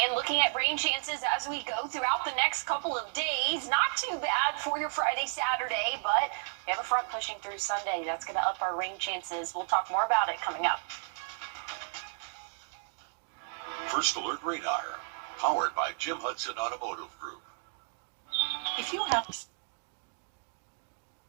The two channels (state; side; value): silent; left; digital silence